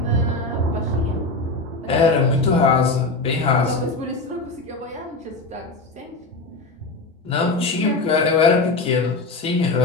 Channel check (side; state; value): right; quieter; 3.3 dB